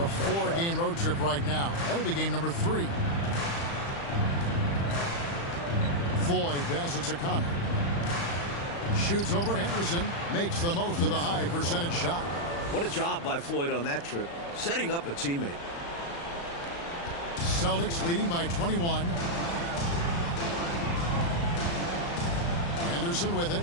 4-game road trip right now. That'll be game number 3. Floyd passes to Connor. Shoots over Henderson. Makes the most of the high percentage shot. What a job by Floyd on that trip, setting up a teammate. Celtics leading by 21. Henderson with it.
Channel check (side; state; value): right; late; 35 ms